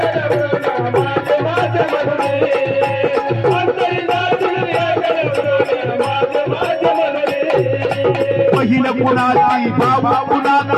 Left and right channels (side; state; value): both; identical; correlation 1.00